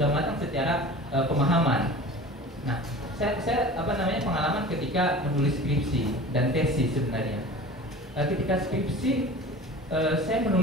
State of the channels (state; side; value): normal; both; correlation 0.38